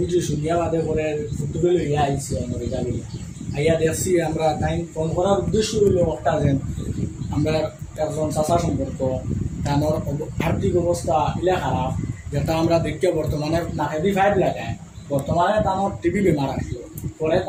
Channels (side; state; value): both; identical; correlation 1.00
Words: শুনিয়া বাদে করে ফুটবল ইয়া আইসি রেজা গিয়া আইয়া দেখছি আমরা তাই ফোন করার উদ্দেশ্য হইল একটা যেন আমরা একজন চাচা সম্পর্ক তার আর্থিক অবস্থা ইলা খারাপ, যেটা আমরা দেখতে বর্তমানে নাকেদি ফাইভ লাগায়, বর্তমানে তানোর টিবি বেমার আসলো, পরে